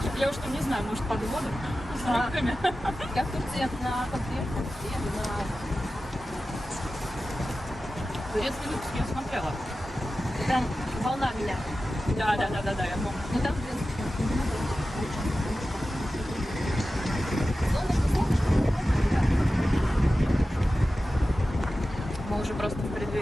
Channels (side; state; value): both; normal; correlation 0.94